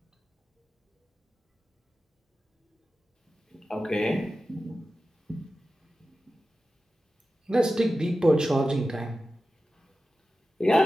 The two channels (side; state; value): both; normal; correlation 0.93